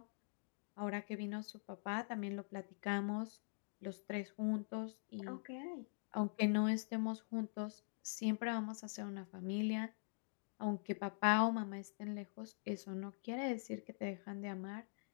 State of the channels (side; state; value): right; silent; digital silence